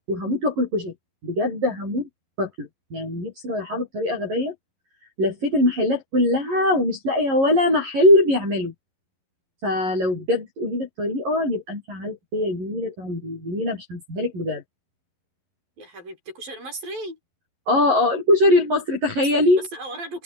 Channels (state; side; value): late; left; 11 ms